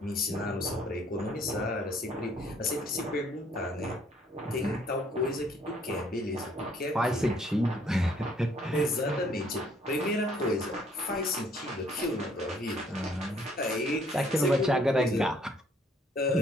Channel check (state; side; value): normal; both; correlation 0.63